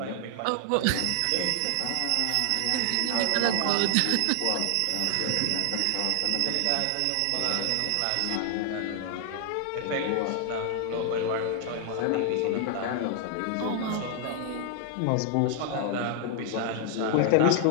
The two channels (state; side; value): different; both; correlation 0.00